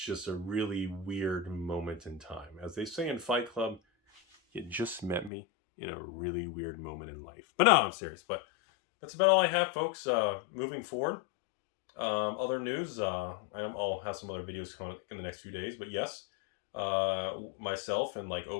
a really weird moment in time. As they say in Fight Club, you just met me in a really weird moment in life. But no, I'm serious. But that's about all I have, folks. Moving forward, other news, I'll have some other videos coming in the next few days. But yes, myself and like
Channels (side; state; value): right; drops out; at 5.3 s